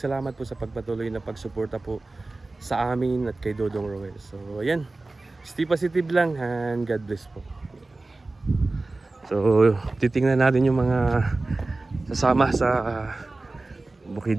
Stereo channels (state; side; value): quieter; left; 3.2 dB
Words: po sa pagpatuloy na pagsuporta po sa amin at kay Dodong Roel. So ayan, stay positive lang and God bless po. So titingnan natin yung mga sasama sa